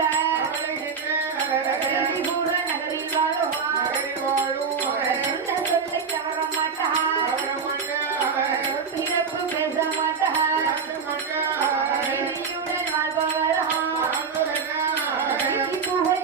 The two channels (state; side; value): quieter; left; 5.7 dB